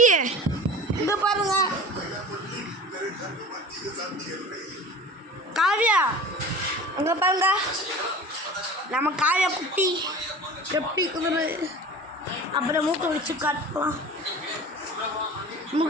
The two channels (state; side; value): normal; both; correlation 0.38